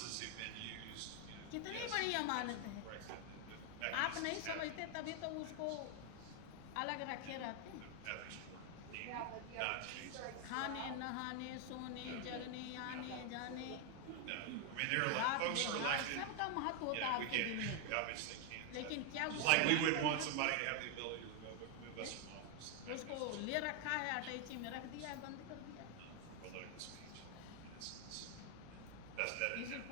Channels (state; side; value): different; both; correlation 0.01